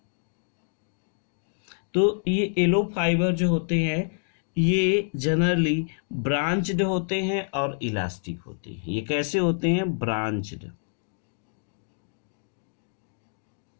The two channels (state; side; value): silent; right; digital silence